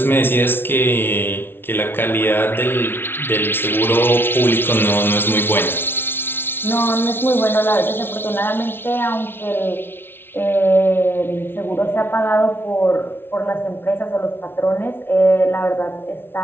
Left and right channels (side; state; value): right; late; 0.11 ms